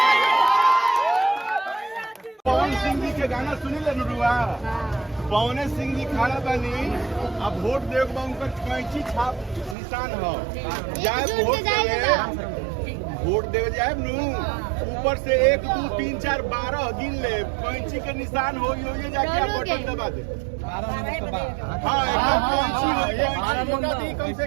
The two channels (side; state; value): left; drops out; at 9.8 s